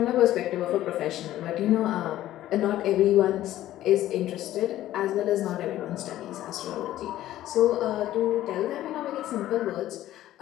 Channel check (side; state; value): right; quieter; 13.8 dB